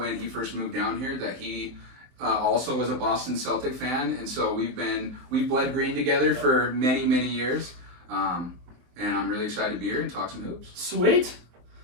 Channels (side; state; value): left; late; 23 ms